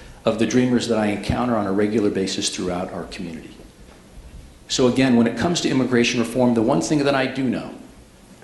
of the dreamers that I encounter on a regular basis throughout our community. So again, when it comes to immigration reform, the one thing that I do know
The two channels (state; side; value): identical; both; correlation 1.00